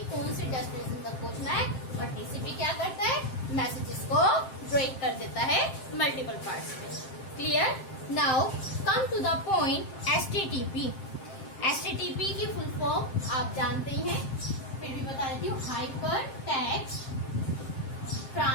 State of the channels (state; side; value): late; right; 7.6 ms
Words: कौन सी डेस्टिनेशन तक पहुंचना है। और टीसीपी क्या करता है, मैसेजेस को ब्रेक कर देता है मल्टीपल पार्ट्स में। Clear? Now come to the point HTTP. HTTP की फुल फॉर्म आप जानते ही हैं, फिर भी बता देती हूँ, hyper text